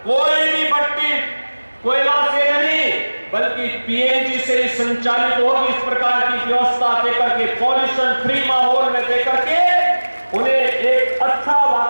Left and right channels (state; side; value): inverted; both; correlation -1.00